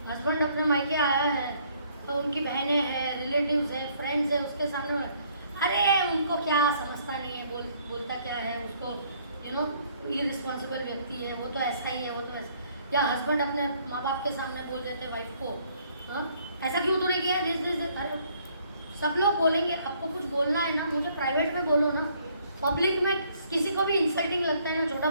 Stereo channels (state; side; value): inverted; both; correlation -0.64